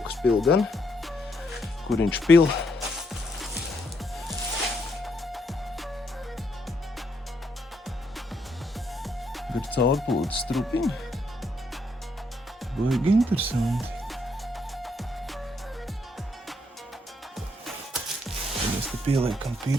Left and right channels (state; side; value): normal; both; correlation 0.74